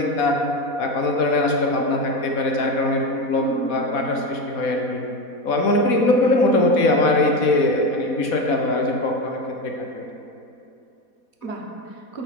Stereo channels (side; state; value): right; late; 4.1 ms